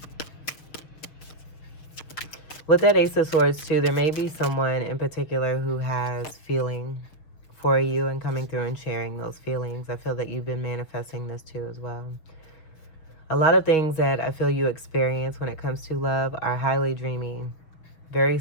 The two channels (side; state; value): right; late; 6.4 ms